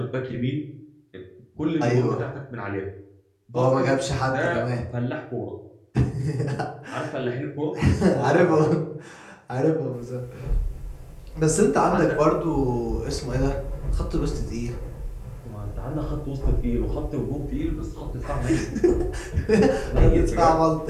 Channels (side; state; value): both; identical; correlation 1.00